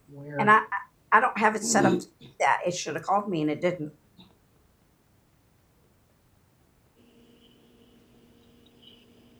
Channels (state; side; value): identical; both; correlation 1.00